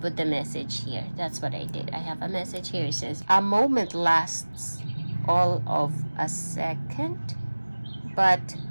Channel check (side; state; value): both; inverted; correlation -1.00